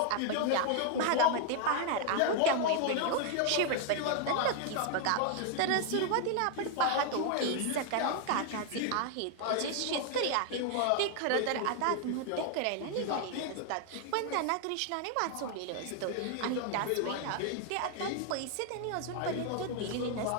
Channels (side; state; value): both; different; correlation 0.00